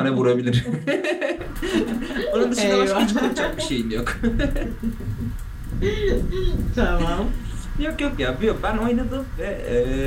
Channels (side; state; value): both; identical; correlation 1.00